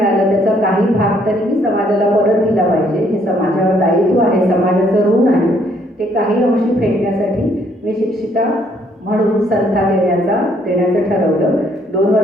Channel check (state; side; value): normal; both; correlation 0.67